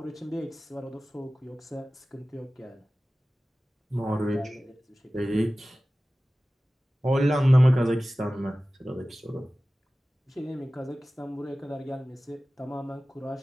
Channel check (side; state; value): both; normal; correlation 0.96